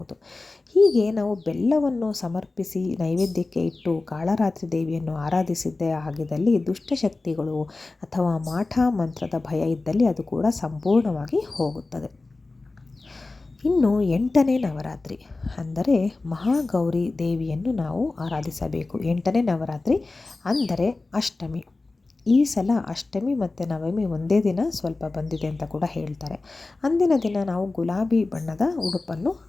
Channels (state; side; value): quieter; right; 3.4 dB